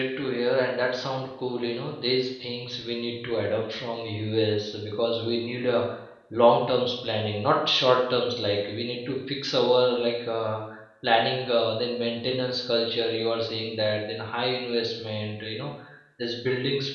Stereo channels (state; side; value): identical; both; correlation 1.00